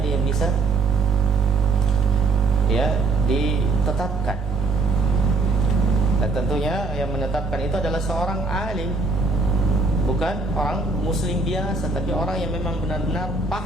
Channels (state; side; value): quieter; left; 3.7 dB